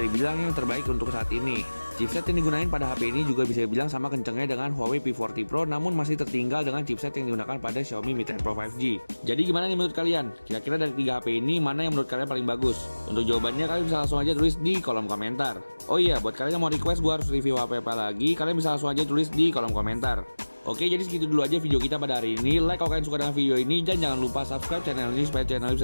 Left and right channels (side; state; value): both; inverted; correlation -1.00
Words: dibilang yang terbaik untuk saat ini. Chipset yang digunakan pada HP ini juga bisa dibilang sama kencangnya dengan Huawei P40 Pro, namun masih tertinggal dengan chipset yang digunakan pada Xiaomi Mi 10 Pro 5G. Jadi gimana nih menurut kalian? Kira-kira dari 3 HP ini, mana yang menurut kalian paling bagus? Untuk jawabannya kalian bisa langsung aja tulis di kolom komentar. Oh iya, buat kalian yang mau request gue harus review HP apa lagi, kalian bisa langsung aja tulis di kolom komentar. Oke, jadi segitu dulu aja video kita pada hari ini. Like kalau kalian suka dengan video ini, dan jangan lupa subscribe channel ini supaya channel ini